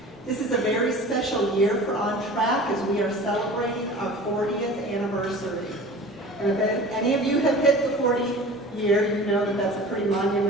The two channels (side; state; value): both; normal; correlation 0.40